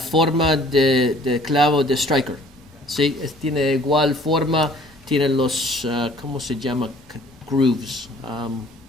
de clavo de striker, ¿sí? Tiene igual forma, tiene los, ¿cómo se llama? Grooves.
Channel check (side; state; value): both; normal; correlation 0.55